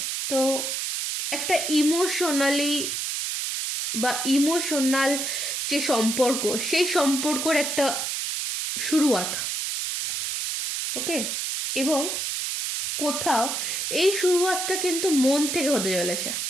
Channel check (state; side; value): noise; right; hiss, 2 dB below the sound